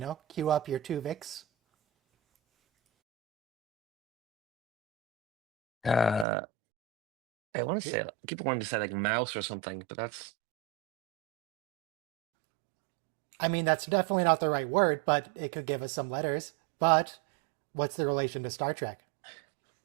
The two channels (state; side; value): drops out; left; at 6.2 s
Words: queue up your Twovix. Uh, I want to say people wanted to say like mouse or something, but that's I mean, that's definitely not the right word, but it could give us some letters. But what's the relation to Star Trek?